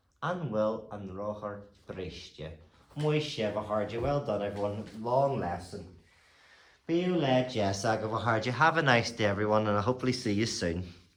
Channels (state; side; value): identical; both; correlation 1.00